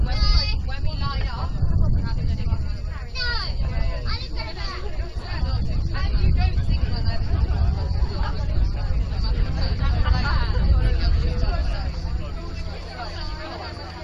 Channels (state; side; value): identical; both; correlation 1.00